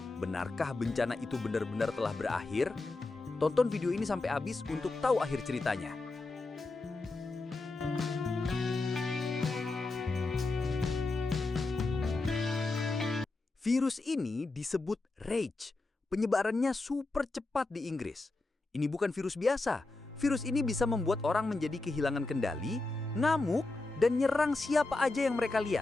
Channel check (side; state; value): right; quieter; 3.3 dB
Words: benarkah bencana itu benar-benar telah berakhir? Tonton video ini sampai habis untuk tahu akhir ceritanya. Virus ini disebut Rage. Penyebarannya super cepat di Inggris. Ini bukan virus biasa. Virus ini bisa membuat orang menjadi kehilangan kendali, ngamuk, dan nyerang siapa aja yang mereka